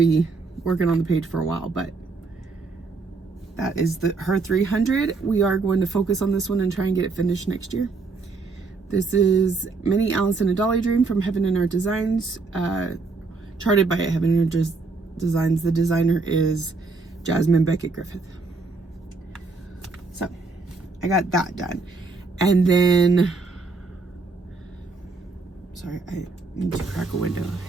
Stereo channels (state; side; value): quieter; left; 4.1 dB